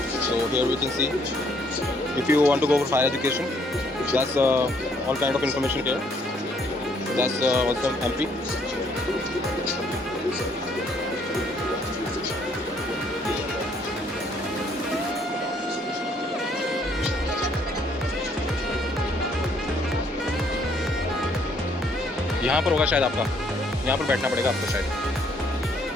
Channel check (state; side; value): normal; both; correlation 0.66